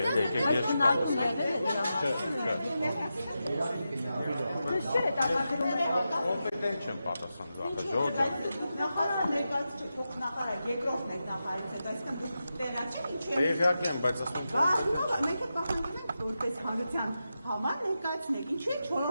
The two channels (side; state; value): both; inverted; correlation -0.90